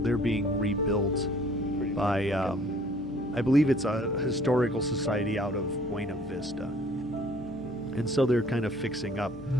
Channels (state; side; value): noise; right; hum, 20 dB below the sound